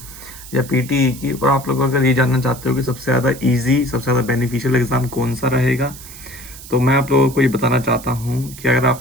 या पीटीई की, और आप लोग अगर ये जानना चाहते हो कि सबसे ज़्यादा इजी, सबसे ज़्यादा बेनिफिशियल एग्ज़ाम कौन सा रहेगा, तो मैं आप लोगों को ये बताना चाहता हूँ कि अगर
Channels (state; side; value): noise; right; hiss, 16 dB below the sound